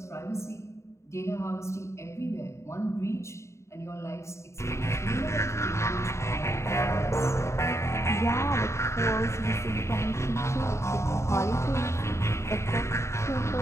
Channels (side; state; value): right; late; 0.14 ms